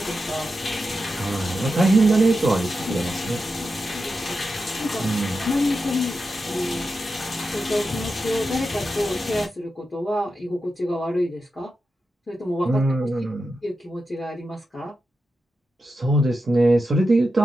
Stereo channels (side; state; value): both; normal; correlation 0.89